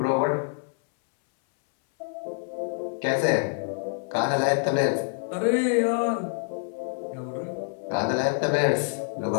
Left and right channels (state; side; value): silent; right; 61 dB below the other